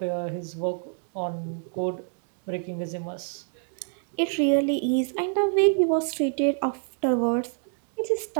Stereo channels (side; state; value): left; silent; 58 dB below the other